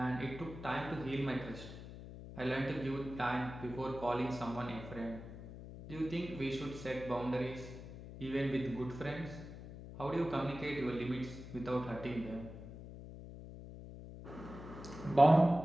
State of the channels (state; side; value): noise; left; hum, 12 dB below the sound